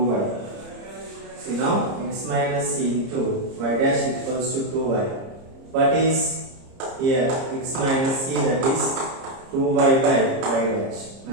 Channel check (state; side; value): late; left; 30 ms